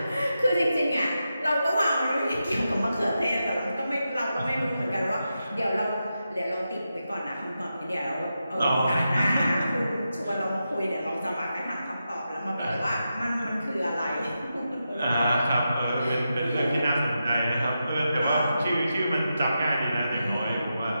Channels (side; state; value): both; inverted; correlation -0.88